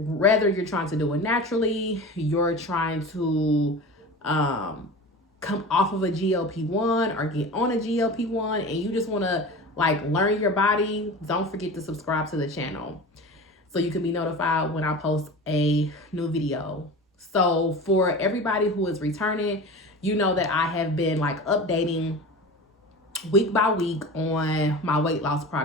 trying to do it naturally, you're trying to come off of a GLP-1 or get on a GLP-1, and you just want to like learn your body, don't forget to subscribe to the channel so you can be notified when I post a new video. So for everybody who is returning, you know that I have been like updating week by week on my weight loss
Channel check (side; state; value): both; normal; correlation 0.33